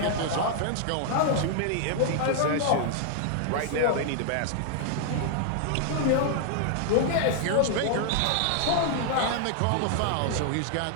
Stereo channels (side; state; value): both; different; correlation 0.00